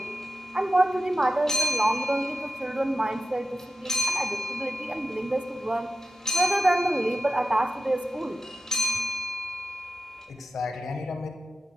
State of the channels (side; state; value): both; normal; correlation 0.91